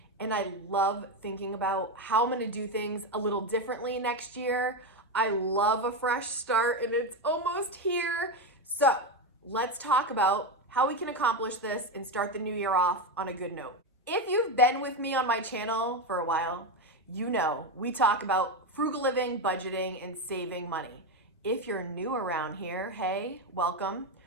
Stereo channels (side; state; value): both; normal; correlation 0.11